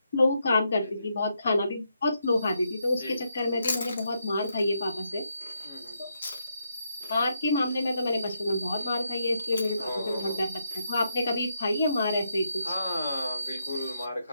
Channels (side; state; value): both; inverted; correlation -0.80